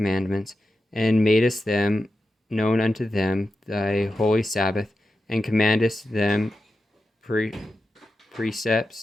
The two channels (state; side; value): normal; both; correlation 0.90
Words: and madest them known unto them thy holy Sabbath, and commandest them precepts,